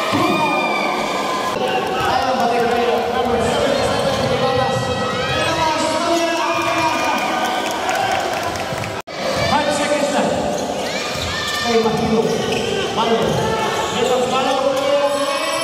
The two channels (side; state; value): both; identical; correlation 1.00